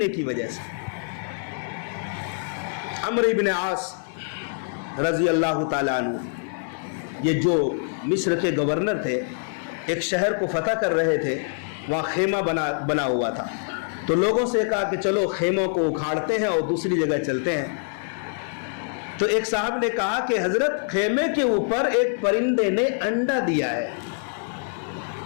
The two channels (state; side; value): silent; right; 62 dB below the other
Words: کی وجہ سے عمرو ابن عاص رضی اللہ تعالیٰ عنہ، یہ جو مصر کے گورنر تھے، ایک شہر کو فتح کر رہے تھے، وہاں خیمہ بنا ہوا تھا، تو لوگوں سے کہا کہ چلو خیموں کو اکھاڑتے ہیں اور دوسری جگہ چلتے ہیں۔ تو ایک صاحب نے کہا کہ حضرت خیمے کے اوپر ایک پرندے نے انڈا دیا ہے،